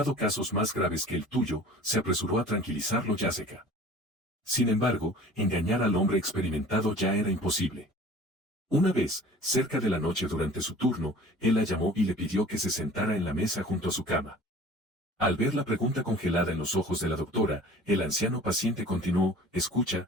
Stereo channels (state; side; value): normal; both; correlation 0.45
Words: casos más graves que el tuyo, se apresuró a tranquilizarlo Jessica. Sin embargo, engañar al hombre experimentado ya era imposible. Una vez, cerca de la noche durante su turno, él la llamó y le pidió que se sentara en la mesa junto a su cama. Al ver la pregunta congelada en los ojos de la doctora, el anciano paciente continuó, escucha,